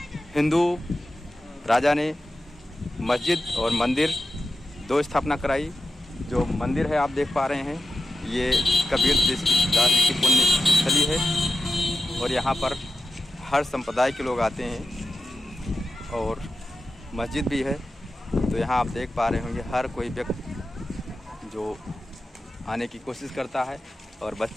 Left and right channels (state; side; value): normal; both; correlation 0.91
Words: हिंदू राजा ने मस्जिद और मंदिर दो स्थापना कराई। जो मंदिर है आप देख पा रहे हैं, ये कबीर दास जी की पुण्य स्थली है और यहाँ पर हर संप्रदाय के लोग आते हैं और मस्जिद भी है। तो यहाँ आप देख पा रहे होंगे हर कोई व्यक्ति जो आने की कोशिश करता है और